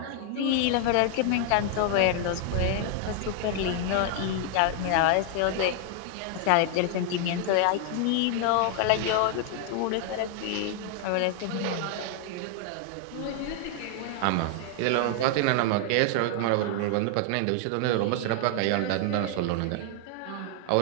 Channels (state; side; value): different; both; correlation 0.00